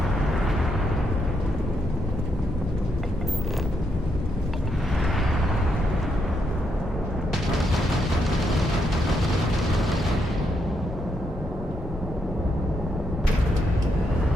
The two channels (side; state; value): both; normal; correlation 0.79